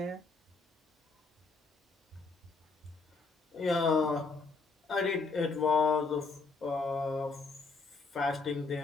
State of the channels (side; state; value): right; quieter; 4.1 dB